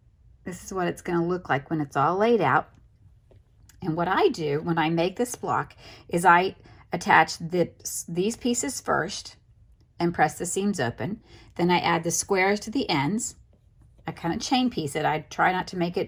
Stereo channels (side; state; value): both; identical; correlation 1.00